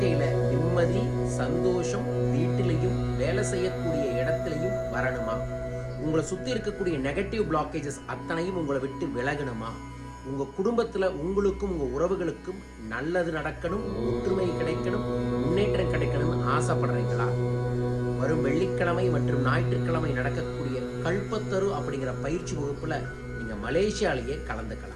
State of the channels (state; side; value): identical; both; correlation 1.00